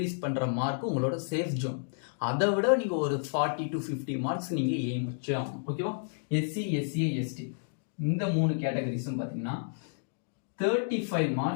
பண்ற மார்க் உங்களோட சேஃப் ஜோன். அதை விட நீங்க ஒரு 40 to 50 மார்க்ஸ் நீங்க எய்ம் வச்சு ஆகணும், ஓகேவா? எஸ்சி, எஸ்சிஏ, எஸ்டி இந்த 3 கேட்டகரிஸும் பாத்தீங்கன்னா 35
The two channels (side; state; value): right; silent; digital silence